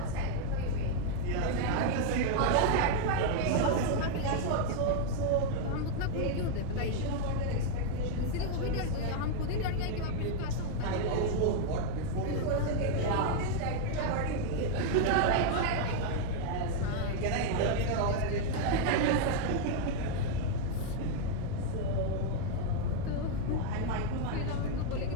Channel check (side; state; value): both; different; correlation 0.00